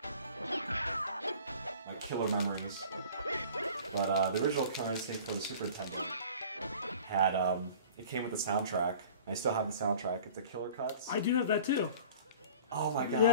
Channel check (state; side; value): inverted; both; correlation -0.45